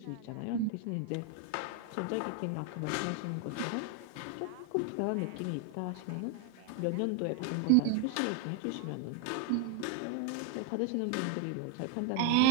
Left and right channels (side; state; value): both; different; correlation 0.01